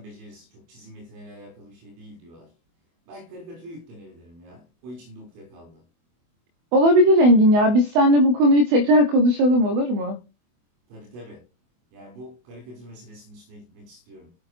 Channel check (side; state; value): left; late; 24 ms